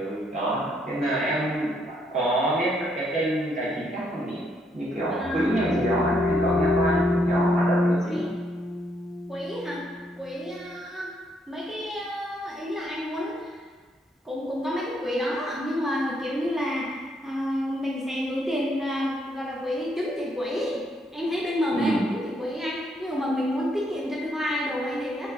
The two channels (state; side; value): normal; both; correlation 0.73